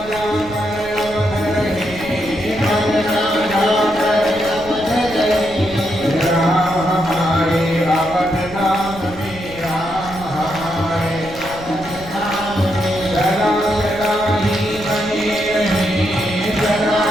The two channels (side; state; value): left; noise; rumble, 16 dB below the sound